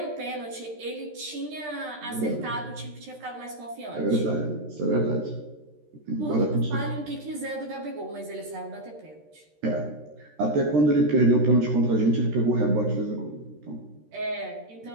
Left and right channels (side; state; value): left; late; 13 ms